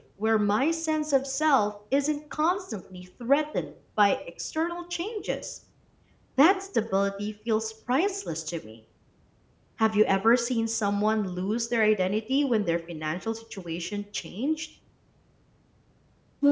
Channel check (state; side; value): identical; both; correlation 1.00